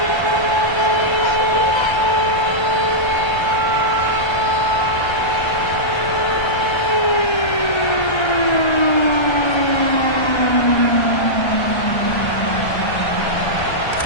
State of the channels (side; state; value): right; late; 1.3 ms